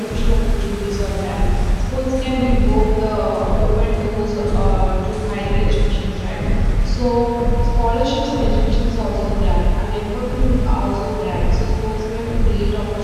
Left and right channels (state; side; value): identical; both; correlation 1.00